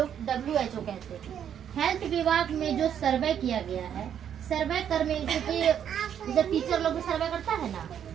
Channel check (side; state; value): left; quieter; 9.1 dB